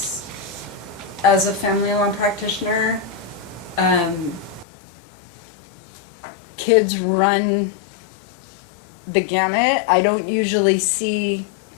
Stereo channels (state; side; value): drops out; right; at 4.7 s